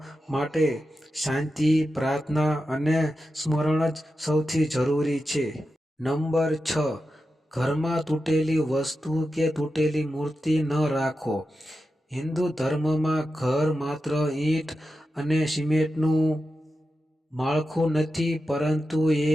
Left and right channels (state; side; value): normal; both; correlation 0.90